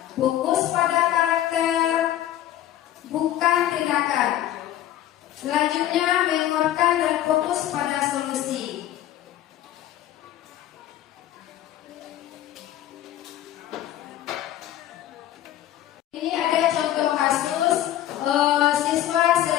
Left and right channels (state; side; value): quieter; right; 12.6 dB